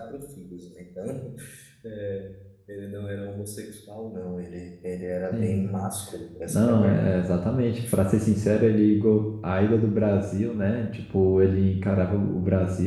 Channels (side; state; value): both; identical; correlation 1.00